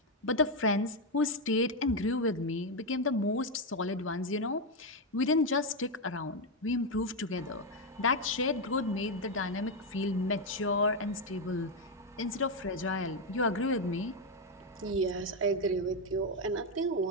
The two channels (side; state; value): both; normal; correlation 0.04